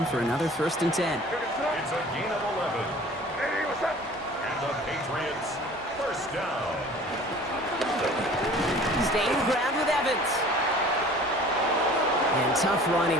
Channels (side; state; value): both; normal; correlation 0.46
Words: for another first and 10. It's a gain of 11. And the Patriots first down. Staying ground with Evans. And tough running